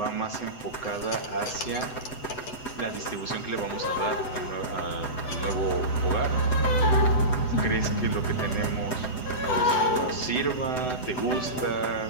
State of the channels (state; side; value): late; right; 7.9 ms